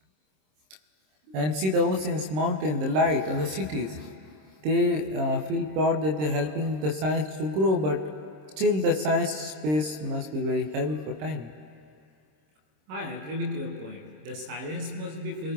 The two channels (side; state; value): left; late; 26 ms